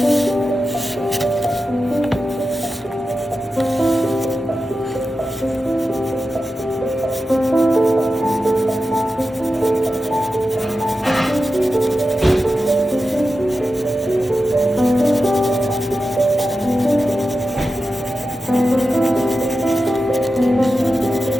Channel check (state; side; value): normal; both; correlation 0.92